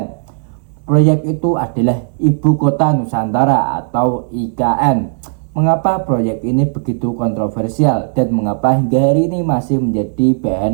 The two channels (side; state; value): left; silent; digital silence